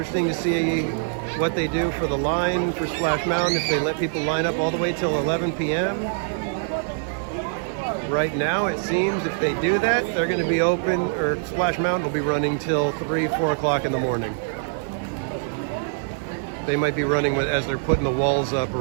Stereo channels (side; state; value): left; silent; digital silence